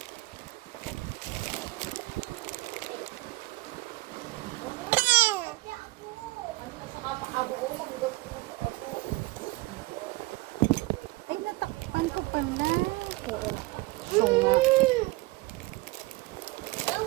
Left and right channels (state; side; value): quieter; left; 21.6 dB